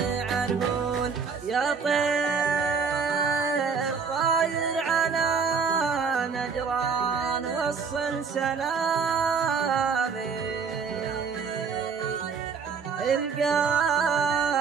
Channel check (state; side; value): quieter; left; 5.7 dB